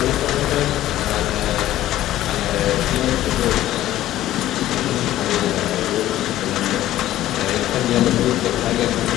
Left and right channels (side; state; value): right; quieter; 14.0 dB